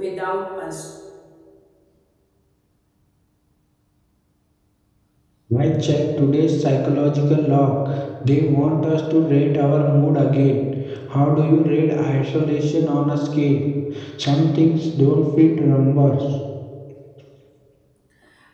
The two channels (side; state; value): both; identical; correlation 1.00